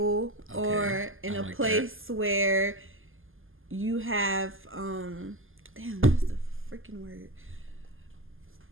Okay, or in I a like place where you have damn, what's the freaking word?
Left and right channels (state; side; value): late; left; 0.59 ms